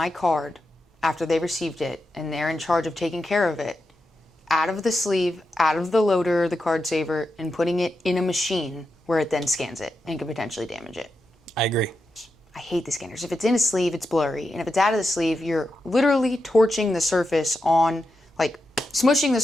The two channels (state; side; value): normal; both; correlation 0.88